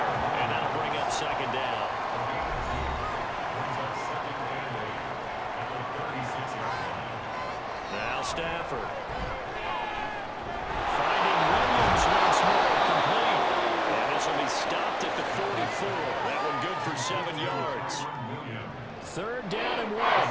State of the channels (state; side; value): identical; both; correlation 1.00